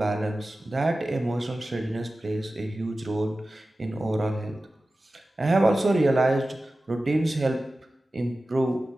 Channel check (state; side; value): normal; both; correlation 0.95